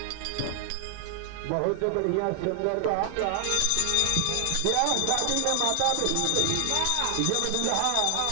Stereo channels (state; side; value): different; both; correlation 0.00